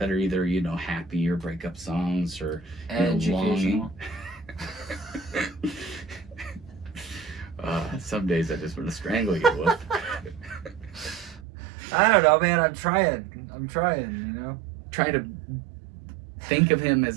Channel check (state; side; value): drops out; left; at 11.5 s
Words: are either happy or breakup songs or longing. Educational. Some days I just want to strangle you with. I don't know, man. I'm trying. Try to think of him